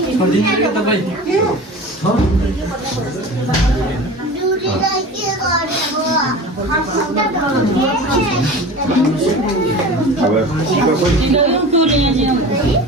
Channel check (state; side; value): normal; both; correlation 0.35